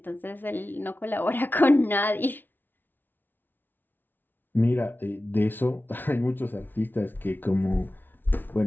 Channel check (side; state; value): right; late; 0.093 ms